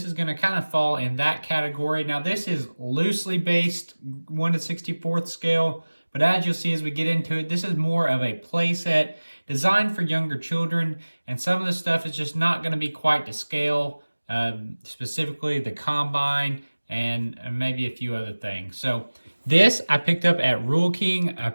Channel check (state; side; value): inverted; both; correlation -1.00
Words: is going to kind of fall in that category. Now this is loosely based 1:64 scale, but as you'll see as we get into it, this is more of a play set designed for younger children, and some of the stuff is just not going to be quite to scale, specifically the combine and maybe a few other things. So this I picked up at Rural King. I